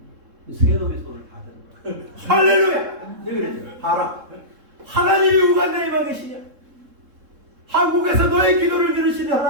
세 놈의 손을 다 드는 거야. 할렐루야! 네 그랬죠. 봐라. 하나님이 우간다에 만 계시냐? 한국에서 너의 기도를 들으시는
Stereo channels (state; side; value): late; left; 3.7 ms